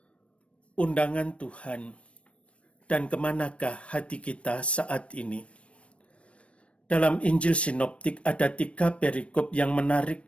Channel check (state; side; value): late; right; 0.061 ms